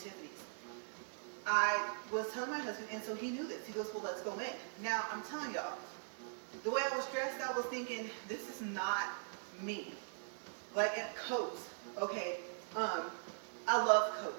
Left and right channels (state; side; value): silent; left; digital silence